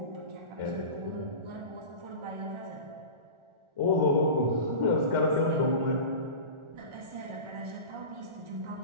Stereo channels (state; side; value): late; left; 1.4 ms